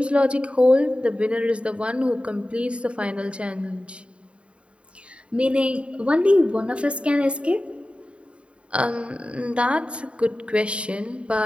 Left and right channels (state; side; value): late; left; 0.059 ms